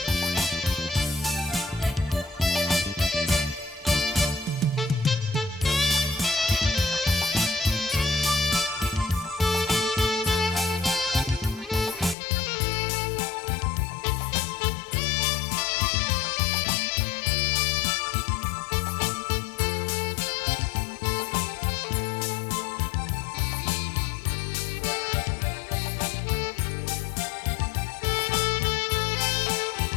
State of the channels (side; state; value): right; drops out; at 12.2 s